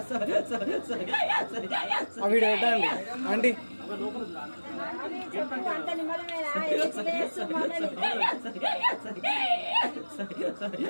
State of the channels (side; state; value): both; inverted; correlation -1.00